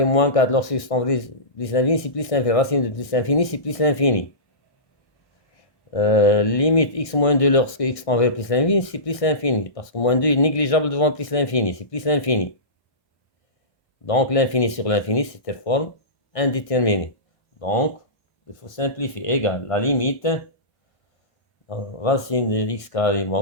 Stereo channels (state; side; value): late; right; 1.6 ms